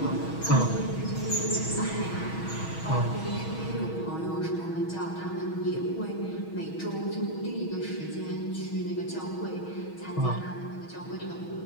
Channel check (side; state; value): right; late; 6.2 ms